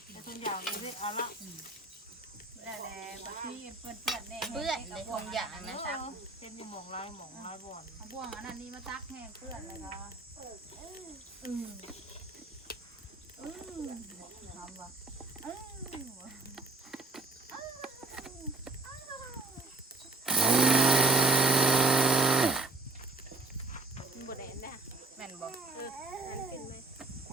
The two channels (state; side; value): quieter; left; 3.3 dB